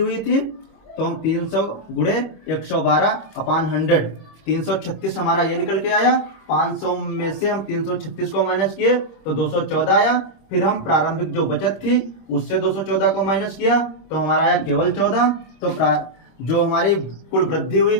थी, तो हम 300 गुणे 112 अपान 100, 336 हमारा ये निकल के आया। 500 में से हम 336 को माइनस किए तो 214 आया। फिर हम प्रारंभिक जो बचत थी उससे 214 को माइनस किया तो हमारा आया केवल 14। तो जो हमारी कुल वृद्धि हुई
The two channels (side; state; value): right; late; 25 ms